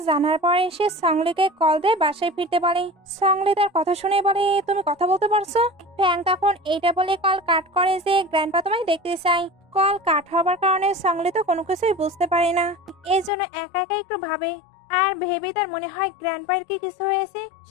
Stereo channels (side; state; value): right; drops out; at 13.3 s